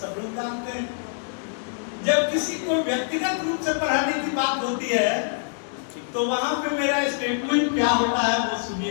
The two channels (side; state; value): right; silent; digital silence